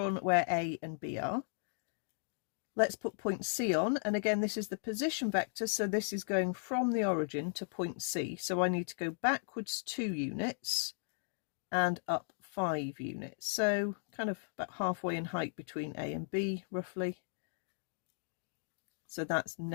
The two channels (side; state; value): right; silent; digital silence